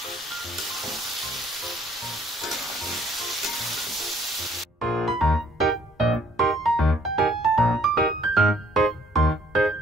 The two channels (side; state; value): both; normal; correlation 0.61